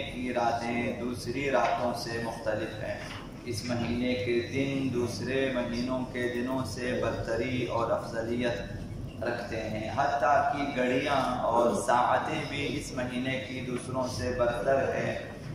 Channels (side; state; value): both; identical; correlation 1.00